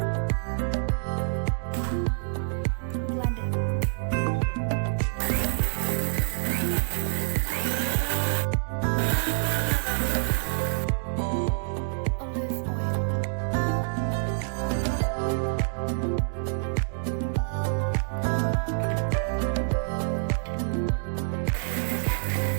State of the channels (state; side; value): silent; left; digital silence